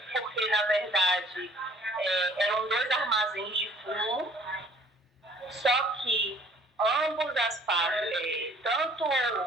porque, na verdade, eram 2 armazéns de fumo, só que ambos as partes, tanto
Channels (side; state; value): both; normal; correlation 0.56